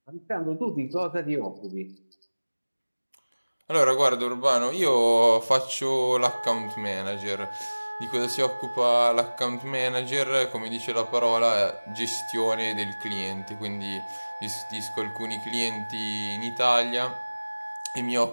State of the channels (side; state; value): both; inverted; correlation -1.00